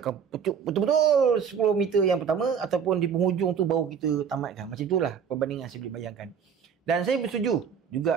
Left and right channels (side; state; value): left; quieter; 7.1 dB